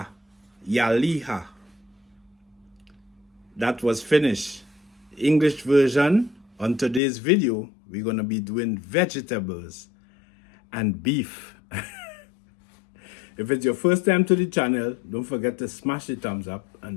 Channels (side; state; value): right; drops out; at 7.0 s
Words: ja liha. That was finished. English version, on today's video, we're going to be doing vegetables and beef. If it's your first time to the channel, don't forget to smash the thumbs up